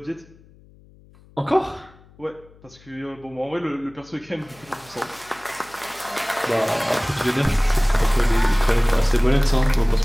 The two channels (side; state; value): left; noise; hum, 26 dB below the sound